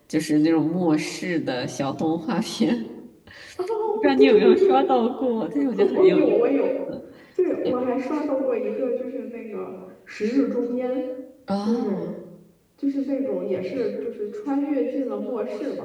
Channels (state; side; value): identical; both; correlation 1.00